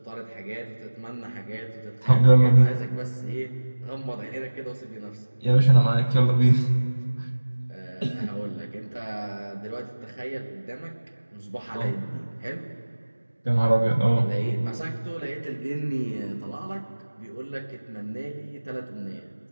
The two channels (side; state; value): both; inverted; correlation -1.00